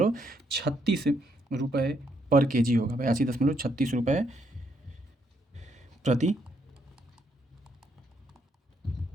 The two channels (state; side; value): normal; both; correlation 0.74